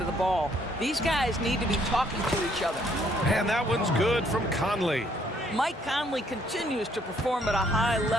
the ball. These guys need to be talking to each other. And that one's good from Conley. Mike Conley continues to perform at a high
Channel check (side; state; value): both; normal; correlation 0.67